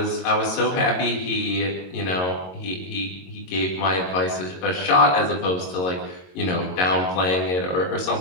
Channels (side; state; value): right; late; 22 ms